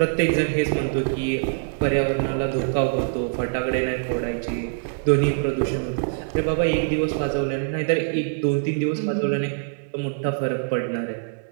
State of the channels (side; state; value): left; silent; 58 dB below the other